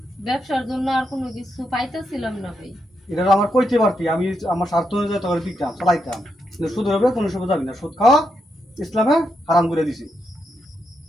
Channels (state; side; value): normal; both; correlation 0.82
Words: ব্যবসার জন্য আর কোনো কিছু পাইতেছিলাম না ভাই। এটা তো আমার কইতে পারতি, আমি আমার স্বার্থ অনুযায়ী তোর দিতাম, চালাইতাম। কিন্তু সুদের উপরে কোনো সময় যাবি না, সুদ খাওয়া ইসলামে হারাম করে দিছি।